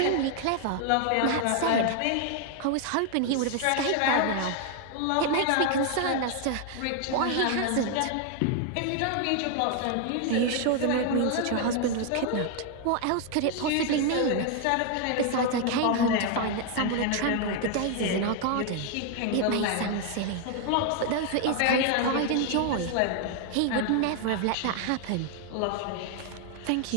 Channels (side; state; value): both; different; correlation 0.00